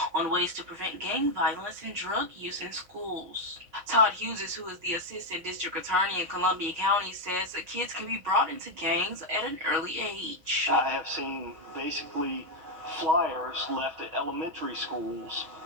on ways to prevent gang violence and drug use in schools. Todd Hughes, who is the Assistant District Attorney in Columbia County, says that kids can be brought into gangs at an early age. I have seen basically flyers left at elementary schools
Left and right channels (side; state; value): left; late; 6.3 ms